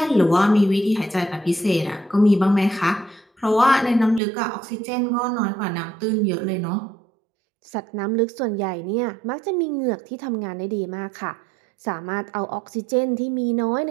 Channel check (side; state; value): left; drops out; at 4.2 s